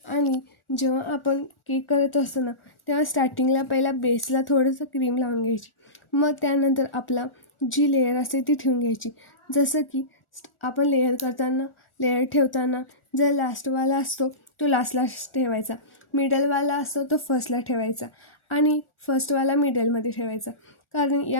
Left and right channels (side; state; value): right; late; 1.4 ms